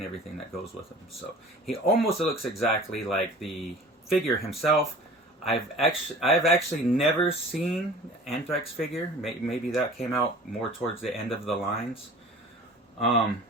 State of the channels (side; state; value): both; normal; correlation 0.43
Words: everything that goes with him. So he almost looks exactly like the figure himself. I've actually never seen Anthrax figure. Maybe that came out more towards the end of the lines.